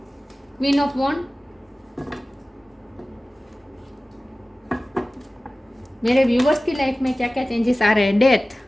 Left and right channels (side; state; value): both; normal; correlation 0.97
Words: क्वीन ऑफ वॉन्ड। मेरे व्यूअर्स की लाइफ में क्या क्या चेंजेस आ रहे हैं। डेथ,